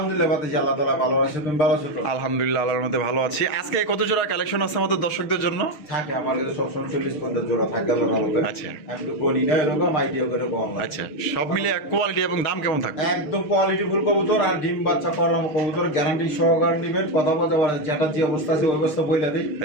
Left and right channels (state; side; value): late; right; 6.4 ms